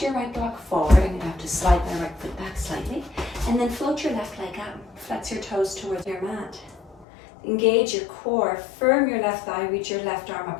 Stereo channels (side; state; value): right; drops out; at 7.1 s